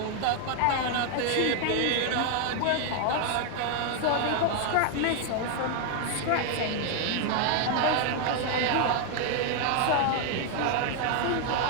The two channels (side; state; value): both; different; correlation 0.01